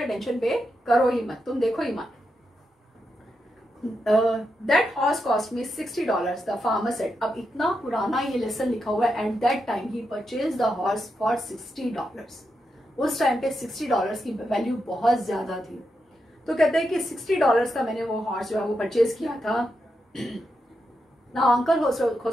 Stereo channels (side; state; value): both; normal; correlation 0.85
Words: अटेंशन पे करो ही मत, तुम देखो ही मत. That horse cost me $60, the farmer said. अब इतना पुराना ये लेसन लिखा हुआ है. At that time he purchased the horse for $60. उस टाइम पे $60 की वैल्यू बहुत ज्यादा थी. तो कहते हैं कि $60 का मैंने वो हॉर्स जो है वो परचेज किया था. Now Uncle